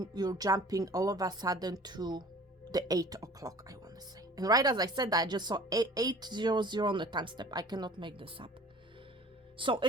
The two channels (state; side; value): normal; both; correlation 0.47